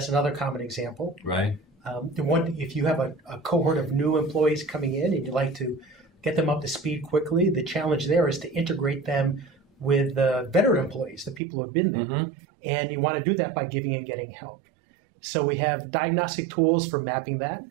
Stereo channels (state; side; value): drops out; left; at 11.4 s